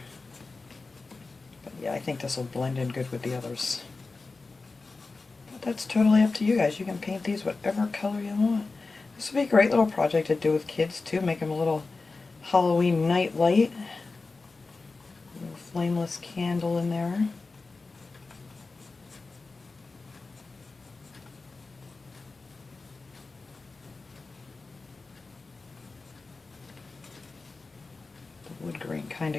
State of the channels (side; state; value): right; quieter; 3.8 dB